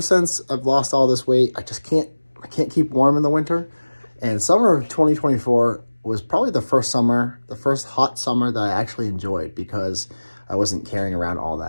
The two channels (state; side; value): inverted; both; correlation -1.00